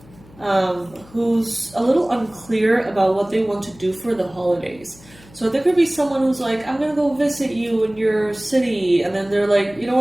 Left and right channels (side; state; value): left; noise; hum, 24 dB below the sound